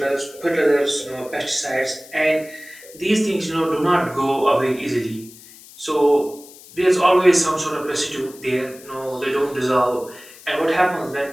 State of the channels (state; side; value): noise; left; hiss, 20 dB below the sound